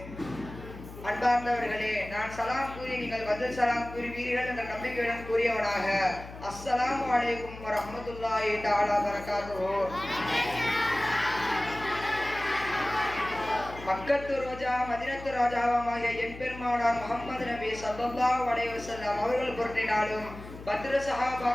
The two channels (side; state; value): left; noise; hum, 14 dB below the sound